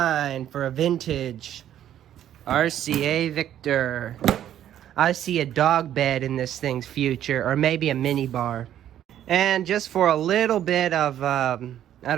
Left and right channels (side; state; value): left; quieter; 11.1 dB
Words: for a vintage RCA Victor. I see a dog bed in this thing's future, or maybe a mini bar. And just for a little bit of, I